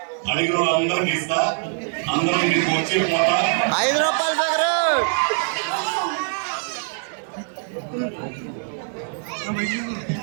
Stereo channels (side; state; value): left; silent; 58 dB below the other